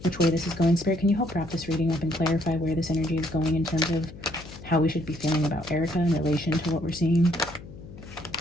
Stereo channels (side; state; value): left; noise; hum, 16 dB below the sound